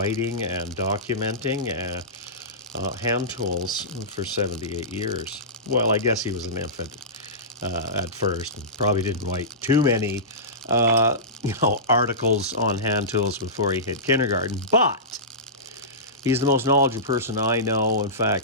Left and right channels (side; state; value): both; normal; correlation -0.20